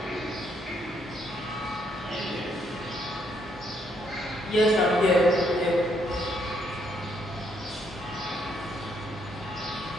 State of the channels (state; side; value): normal; both; correlation 0.73